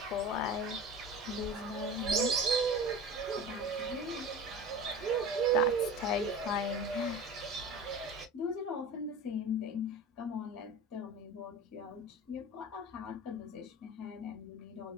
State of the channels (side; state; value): both; normal; correlation 0.34